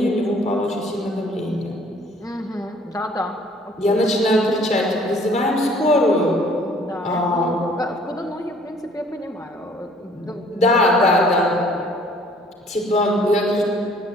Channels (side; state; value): both; normal; correlation 0.57